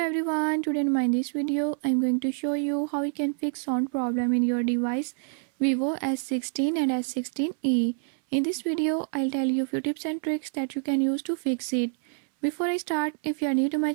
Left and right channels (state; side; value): silent; left; 58 dB below the other